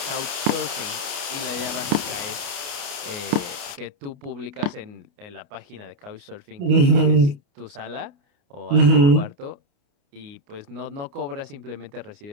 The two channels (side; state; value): left; late; 29 ms